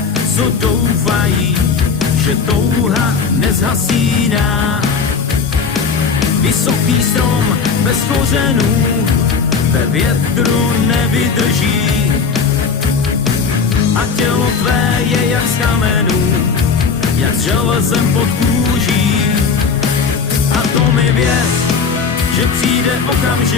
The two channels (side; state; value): right; quieter; 5.4 dB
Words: co doufají, že touha nezhasíná. Vysoký strom bez kořenů ve větru nevydrží a tělo tvé je jak z kamenů, jak s železem pod kůží. A to mi věř, že přijde